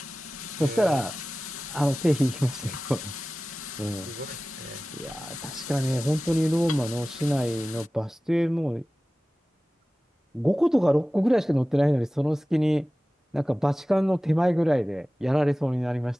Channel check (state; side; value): normal; both; correlation 0.97